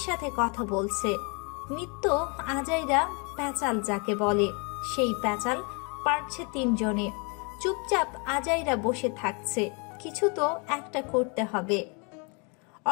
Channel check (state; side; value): quieter; right; 33.5 dB